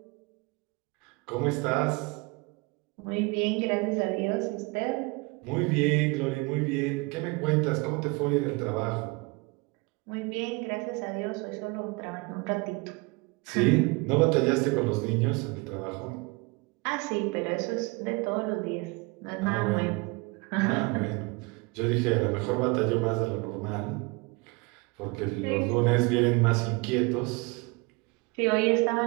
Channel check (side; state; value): left; quieter; 26.7 dB